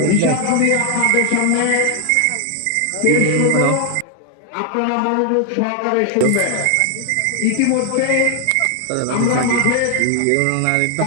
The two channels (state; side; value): different; both; correlation 0.00